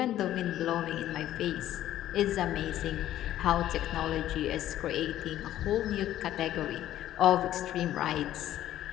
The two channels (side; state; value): right; quieter; 12.8 dB